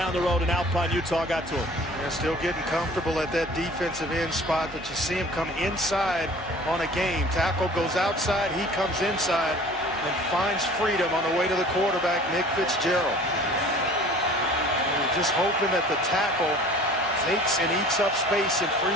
the road in Alpine, Utah, got to him. They're still getting comfortable at that defensive end spot, but you see him come inside on a game. Tackle goes outside, he comes inside and finds freedom on the way to the quarterback, Nick Fitzgerald. And we're just hoping that the tackle takes and eats up space and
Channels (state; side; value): normal; both; correlation 0.47